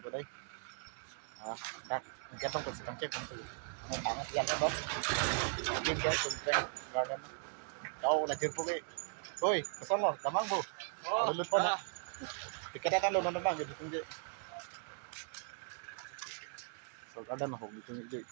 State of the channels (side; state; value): left; silent; 52 dB below the other